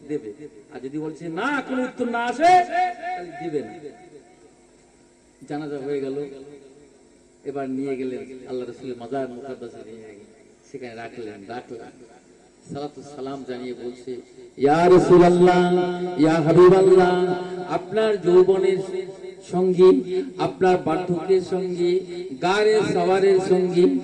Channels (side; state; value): both; identical; correlation 1.00